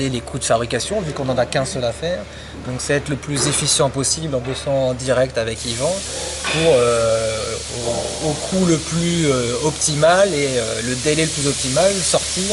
les coûts de fabrication, vu qu'on n'en a qu'un seul à faire. Donc c'est être le plus efficient possible en bossant en direct avec Yvan pour au coût le plus optimal et le délai le plus optimal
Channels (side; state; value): both; identical; correlation 1.00